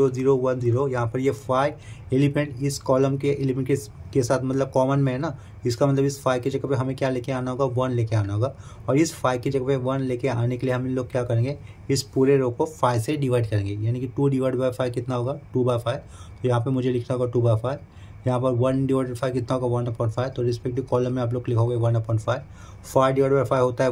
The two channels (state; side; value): identical; both; correlation 1.00